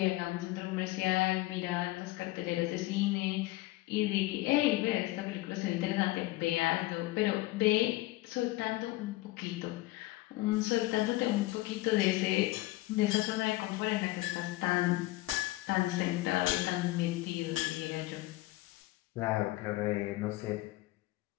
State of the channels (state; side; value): quieter; right; 18.9 dB